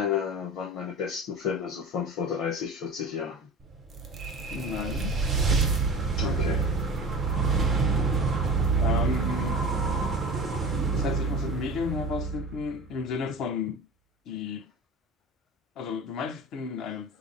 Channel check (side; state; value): both; normal; correlation 0.34